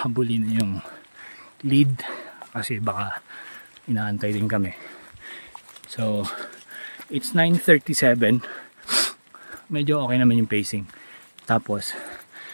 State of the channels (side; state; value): both; inverted; correlation -1.00